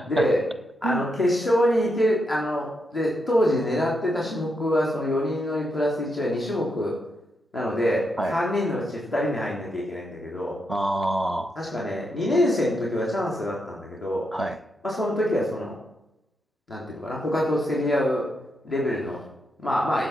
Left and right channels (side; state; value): both; normal; correlation 0.82